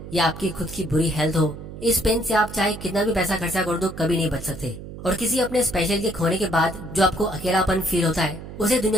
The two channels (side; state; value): right; noise; hum, 12 dB below the sound